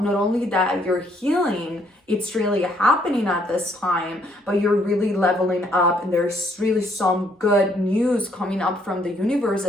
not only that you're healing it's really happening at this time, but you're really leveling up, and there's really some good news coming up from the universe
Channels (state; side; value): normal; both; correlation 0.68